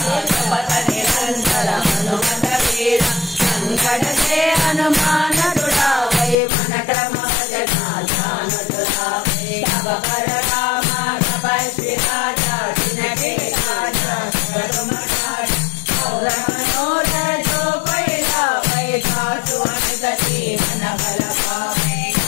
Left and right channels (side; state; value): right; drops out; at 6.4 s